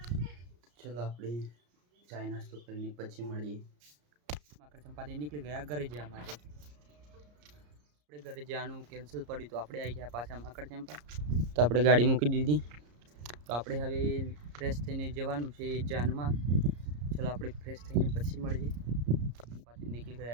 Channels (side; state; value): left; late; 34 ms